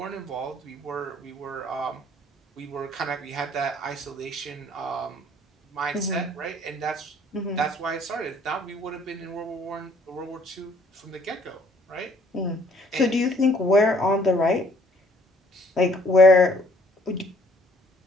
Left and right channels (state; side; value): normal; both; correlation 0.59